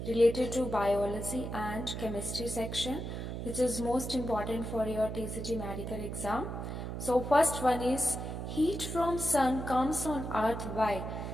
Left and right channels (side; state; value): right; noise; hum, 5 dB below the sound